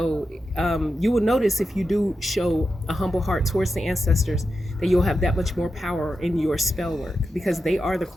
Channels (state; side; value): normal; both; correlation 0.89